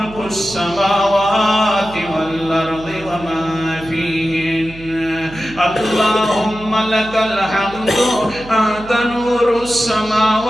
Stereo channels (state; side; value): noise; right; hum, 17 dB below the sound